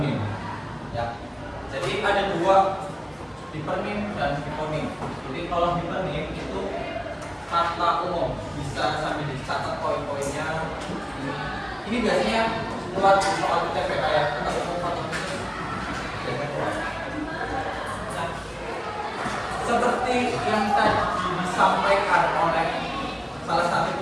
Ya. Jadi ada dua, hipernim dan hiponim. Jadi kalau hipernim itu kata umum, bisa sambil dicatat poin-poinnya. Ini biasanya keluar soal UTP kayak kata umum, kata umum. seperti yang tadi disampaikan oleh salah satu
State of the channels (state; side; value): identical; both; correlation 1.00